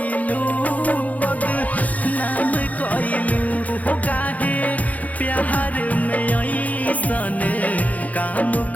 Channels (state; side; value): late; right; 0.074 ms